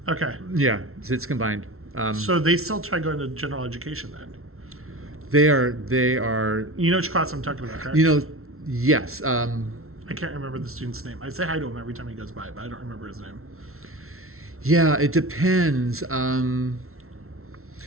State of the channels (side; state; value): left; late; 0.62 ms